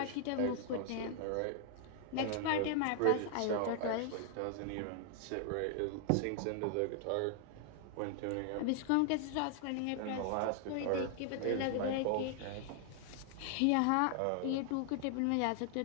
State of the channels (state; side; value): different; both; correlation 0.00